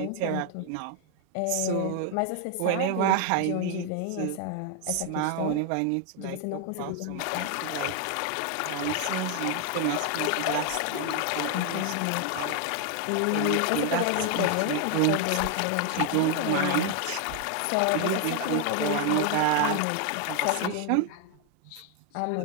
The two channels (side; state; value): both; different; correlation 0.00